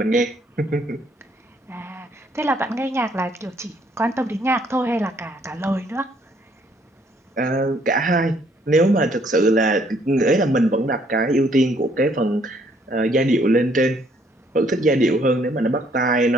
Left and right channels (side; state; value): both; normal; correlation 0.66